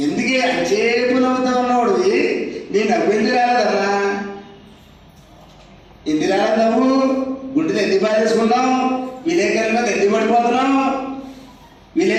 ఎందుకే అచేపు నవ్వుతా ఉన్నవాడు నేను నవ్వింది రాలేదన్నా. ఎందుకు రాలేదు నవ్వు? గుండెలు ఎందుకు బాధేసుకున్నావు? విలేకరుల మీద ఎందుకు పడిపోతున్నావు?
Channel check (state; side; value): identical; both; correlation 1.00